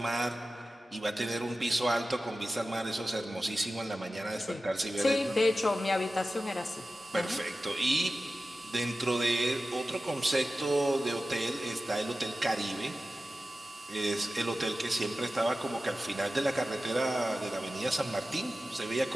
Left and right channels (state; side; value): normal; both; correlation 0.94